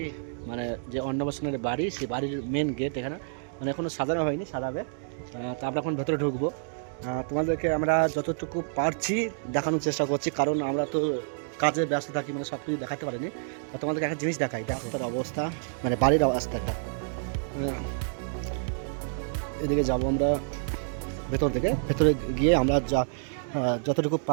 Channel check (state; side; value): silent; left; digital silence